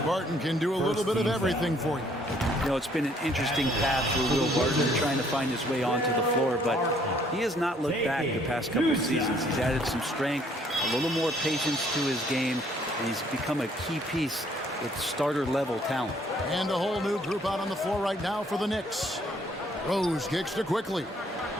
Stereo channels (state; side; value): normal; both; correlation 0.63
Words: Barton can do a little bit of everything for you. You know, it's been an interesting path for Will Barton trying to find his way onto the floor, but he has not looked back the past couple of seasons. He's added some strength, a little more patience to his game, and he's become a key piece with starter-level talent. And a whole new group out on the floor right now for the Knicks. Rose kicks to Quickly.